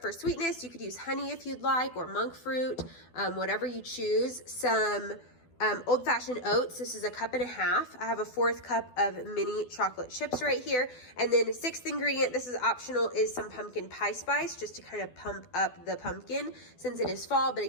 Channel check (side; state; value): right; late; 12 ms